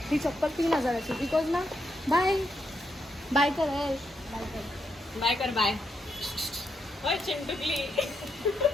ही चप्पल 3000ची. बिकॉज ना बाय बाय कर, बाय कर. बाय ओय चिंटुकली.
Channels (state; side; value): normal; both; correlation 0.80